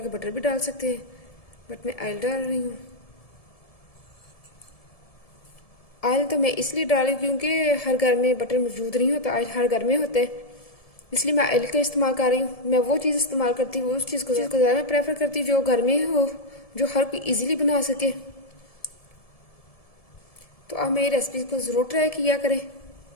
बटर भी डाल सकते हैं, बट मैं ऑयल डाल रही हूँ। ऑयल तो मैं इसलिए डाल रही हूँ क्योंकि हर घर में बटर मौजूद नहीं होता, ऑयल हर घर में होता है, इसलिए मैं ऑयल का इस्तेमाल कर रही हूँ। मैं वो चीज़ इस्तेमाल करती हूँ, उस चीज़ को ज़्यादा मैं प्रेफर करती हूँ जो घर में हो, जो हर कोई इजीली बना सके। तो आप मेरी रेसिपी को ज़रूर ट्राई किया करें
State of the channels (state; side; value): late; right; 1.7 ms